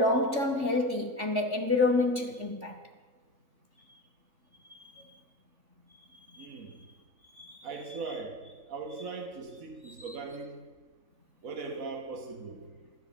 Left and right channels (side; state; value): left; late; 3.4 ms